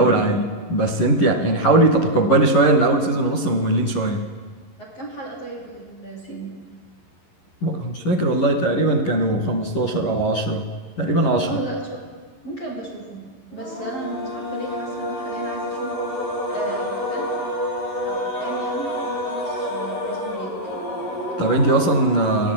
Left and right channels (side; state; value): right; late; 11 ms